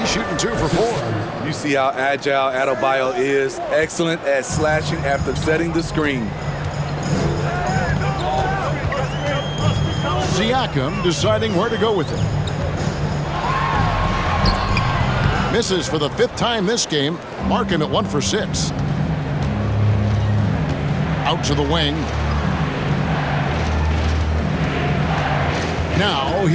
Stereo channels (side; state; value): both; identical; correlation 1.00